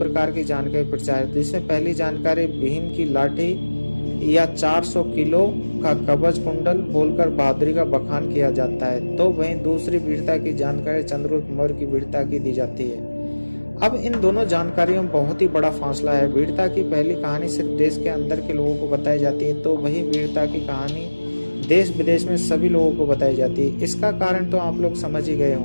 की जानकारी प्रचार है, जिसमें पहली जानकारी भीम की लाठी या 400 किलो का कवच कुंडल बोलकर बहादुरी का बखान किया जाता है, तो वहीं दूसरी वीरता की जानकारी चंद्रगुप्त मौर्य की वीरता की दी जाती है। अब इन दोनों जानकारियों में बहुत ही बड़ा फासला है। वीरता की पहली कहानी सिर्फ देश के अंदर के लोगों को बताई जाती है, तो वही वीरता की कहानी देश विदेश में सभी लोगों को बताई जाती है। इसका कारण तो आप लोग समझ ही गए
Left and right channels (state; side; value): inverted; both; correlation -1.00